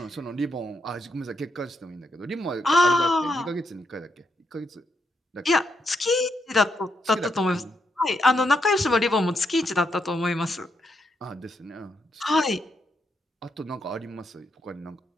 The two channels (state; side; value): normal; both; correlation 0.79